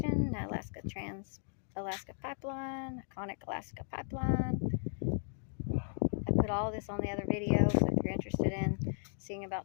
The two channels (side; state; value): right; silent; digital silence